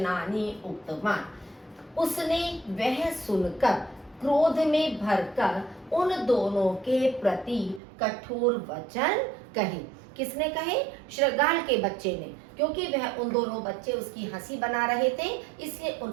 उक्तवान्। उसने वह सुनकर क्रोध में भरकर उन दोनों के प्रति कठोर वचन कहे। किसने कहे? श्रगाल के बच्चे ने, क्योंकि वह उन दोनों बच्चे उसकी हंसी बना रहे थे, इसलिए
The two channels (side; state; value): left; drops out; at 7.8 s